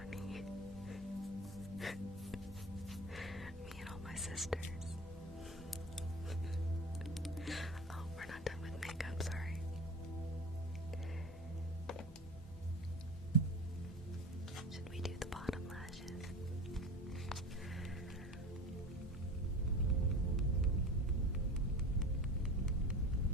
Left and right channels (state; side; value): normal; both; correlation 0.33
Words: Me and all my sisters. Oh, we're not done with makeup, sorry. Should we do the bottom lashes?